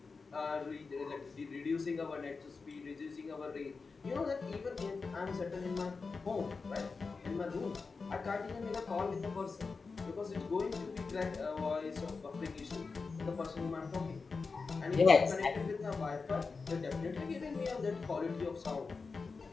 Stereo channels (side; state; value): right; quieter; 4.5 dB